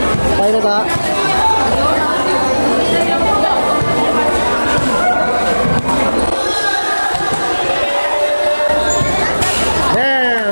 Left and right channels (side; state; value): both; inverted; correlation -1.00